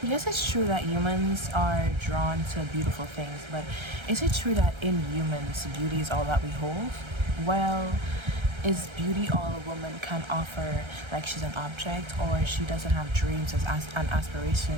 Yes, it's true that humans are drawn to beautiful things, but is it true that in humans, beauty is all that we hold? Well, is beauty all a woman can offer, like she's an object, or she doesn't have dreams and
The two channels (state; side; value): late; left; 1.3 ms